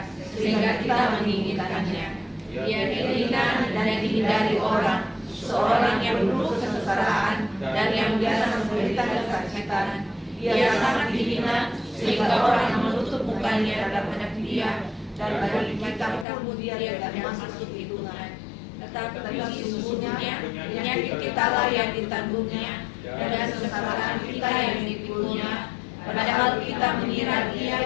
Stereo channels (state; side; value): drops out; right; at 16.2 s